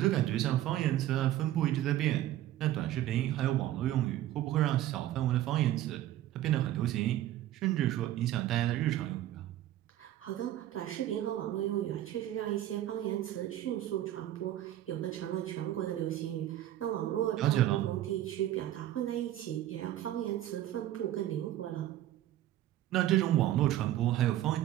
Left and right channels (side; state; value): left; quieter; 13.4 dB